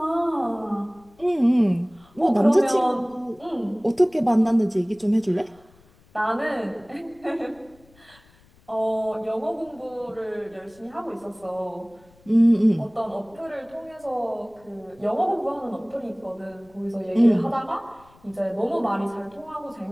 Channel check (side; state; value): left; noise; rumble, 29 dB below the sound